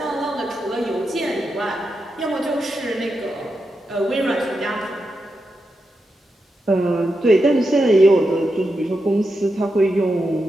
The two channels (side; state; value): both; normal; correlation 0.87